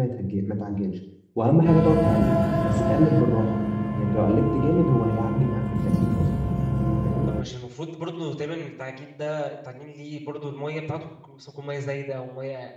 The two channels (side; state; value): both; identical; correlation 1.00